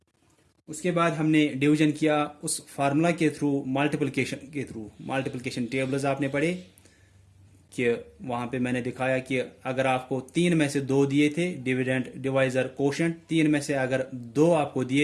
उसके बाद हमने डिवीजन किया उस फार्मूला के थ्रू मल्टीप्लिकेशन के थ्रू। मल्टीप्लिकेशन टेबल्स आपने पढ़े कि वहाँ पे मैंने दिखाया कि अगर आपको 3 में से 2 दिए थे डिविडेंड डिवाइजर कोशेंट 3 में से अगर 2 आपको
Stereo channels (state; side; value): identical; both; correlation 1.00